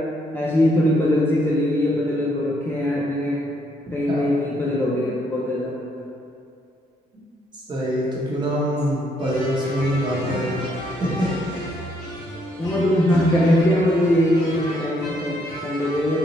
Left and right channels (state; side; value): normal; both; correlation 0.72